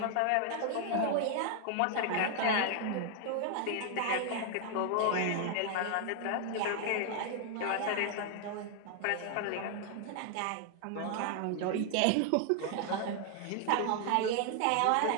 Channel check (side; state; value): both; different; correlation 0.00